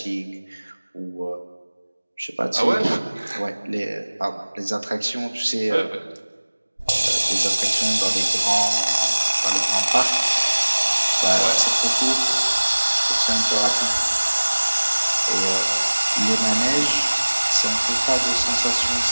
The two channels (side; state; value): both; inverted; correlation -1.00